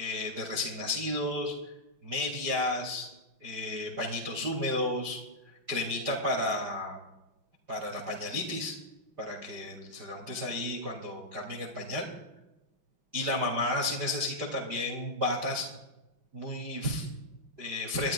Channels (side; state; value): left; late; 5.0 ms